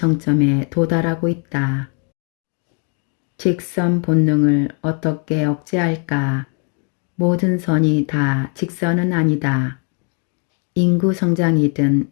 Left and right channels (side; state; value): right; quieter; 39.3 dB